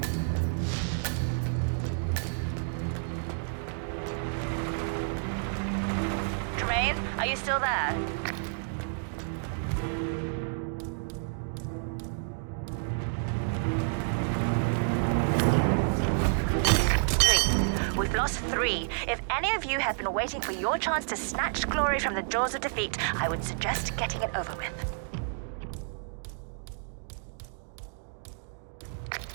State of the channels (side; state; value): left; silent; digital silence